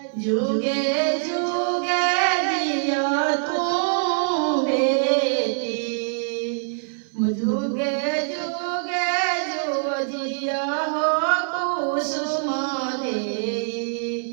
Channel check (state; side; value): silent; left; 59 dB below the other